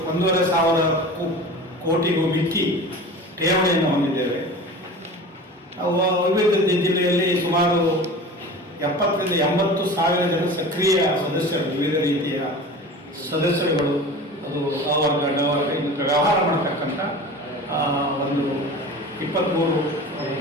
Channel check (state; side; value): normal; both; correlation 0.36